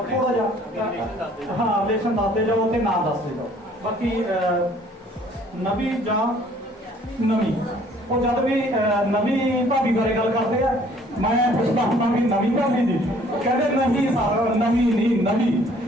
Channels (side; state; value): both; normal; correlation 0.57